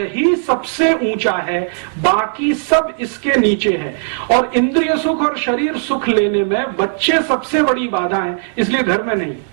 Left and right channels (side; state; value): left; silent; digital silence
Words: सबसे ऊंचा है, बाकी सब इसके नीचे है। और इंद्रिय सुख और शरीर सुख लेने में बच्चे सबसे बड़ी बाधा है, इसलिए घर में नहीं।